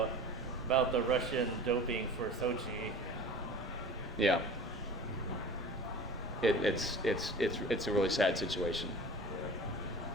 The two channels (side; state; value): both; normal; correlation 0.39